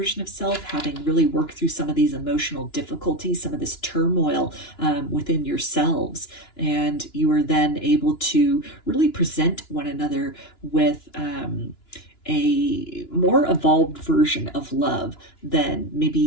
of self, having really worked through some of these emotional difficulties, some of this turmoil within yourselves. And you are then able to really present one another with a more evolved version of love than maybe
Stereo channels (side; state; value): right; late; 2.9 ms